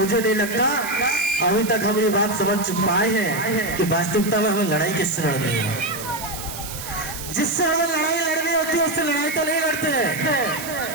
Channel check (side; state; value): right; noise; hiss, 10 dB below the sound